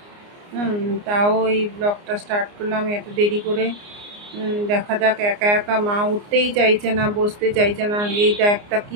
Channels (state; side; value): late; left; 29 ms